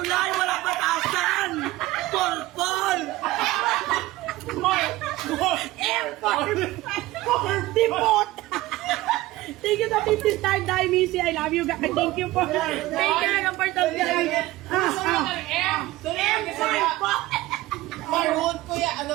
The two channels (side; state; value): left; quieter; 17.7 dB